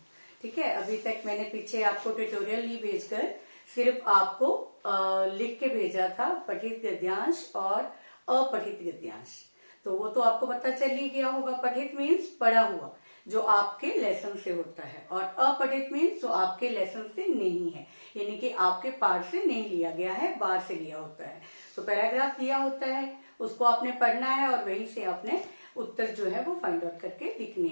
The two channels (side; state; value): both; inverted; correlation -1.00